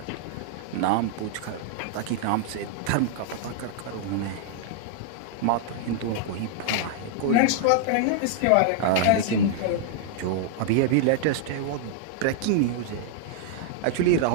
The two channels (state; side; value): different; both; correlation -0.01